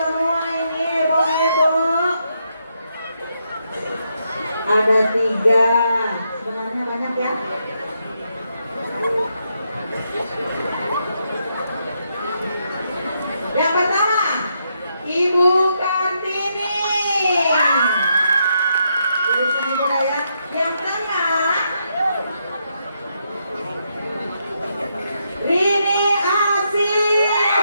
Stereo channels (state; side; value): inverted; both; correlation -0.80